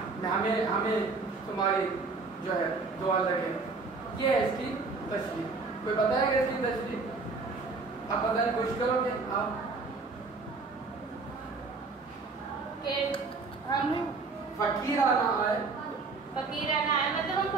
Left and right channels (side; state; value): left; quieter; 4.1 dB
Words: ہمیں تمہاری جو ہے دعا لگے۔ یہ ہے اس کی تشریح۔ کوئی بتائے گا اس کی تشریح؟ آپ بتانے کی کوشش کرو گے آپ کہ ہم فقیرانہ آئے، فقیرانہ آئے مطلب ہم